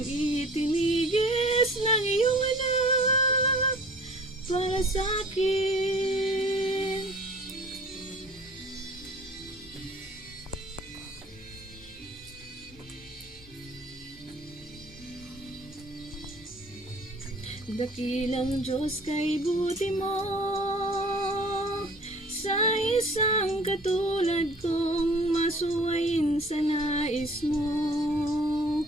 itinigis ng iyong anak para sa akin. Dakilang Diyos, kay buti mo sa isang katulad kong masuwayin sa nais mo.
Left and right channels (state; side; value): normal; both; correlation 0.49